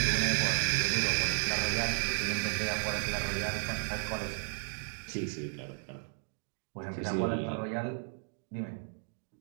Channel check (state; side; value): silent; left; 55 dB below the other